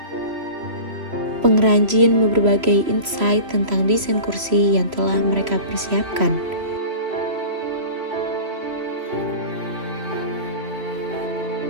Pengrajin berbagai insight tentang desain kursi yang telah mereka persiapkan.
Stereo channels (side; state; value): left; late; 3.0 ms